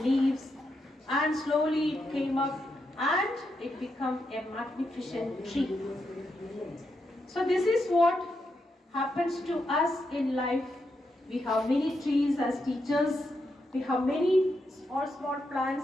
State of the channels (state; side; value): normal; both; correlation 0.83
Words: and slowly it came up and it became a magnificent tree. So this is what happens to us in life. We have many trees as teachers. We have many small